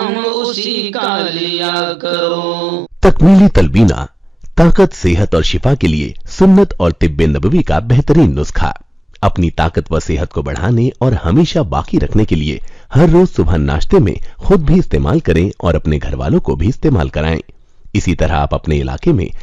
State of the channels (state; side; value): normal; both; correlation 0.96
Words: اسی کا لیا کرو۔ تکمیلی تلبینہ طاقت، صحت اور شفا کے لیے سنت اور طب نبوی کا بہترین نسخہ۔ اپنی طاقت و صحت کو بڑھانے اور ہمیشہ باقی رکھنے کے لیے ہر روز صبح ناشتے میں خود بھی استعمال کریں اور اپنے گھر والوں کو بھی استعمال کرائیں۔ اسی طرح آپ اپنے علاقے میں